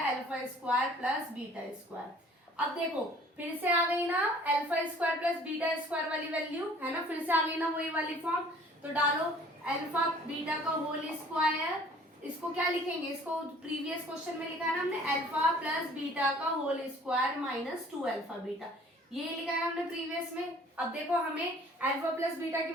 alpha square plus beta square. अब देखो फिर से आ गई ना alpha square plus beta square वाली वैल्यू, है ना, फिर से आ गई ना वही वाली फॉर्म। तो डालो अल्फा बीटा का होल स्क्वायर, इसको क्या लिखेंगे, इसको प्रीवियस क्वेश्चन में लिखा है ना हमने अल्फा प्लस बीटा का whole square minus 2 alpha beta, ये लिखा है हमने प्रीवियस में। अब देखो हमें अल्फा प्लस बीटा की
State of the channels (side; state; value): both; normal; correlation 0.53